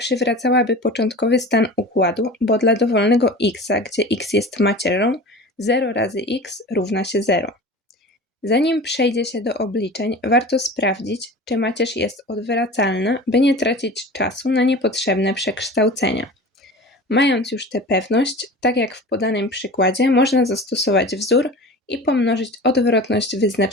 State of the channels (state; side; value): normal; both; correlation 0.36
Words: początkowy stan układu, bo dla dowolnego x, gdzie x jest macierzą, 0 razy x równa się 0. Zanim przejdzie się do obliczeń, warto sprawdzić, czy macierz jest odwracalna, by nie tracić czasu na niepotrzebne przekształcenia. Mając już tę pewność, tak jak w podanym przykładzie, można zastosować wzór i pomnożyć odwrotność